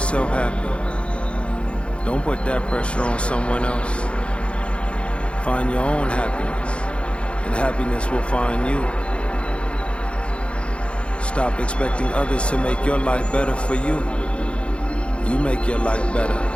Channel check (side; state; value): right; late; 0.059 ms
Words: self happy. Don't put that pressure on someone else. Find your own happiness, and happiness will find you. Stop expecting others to make your life better for you. You make your life better.